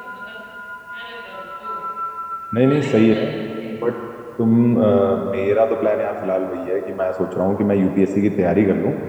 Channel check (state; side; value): identical; both; correlation 1.00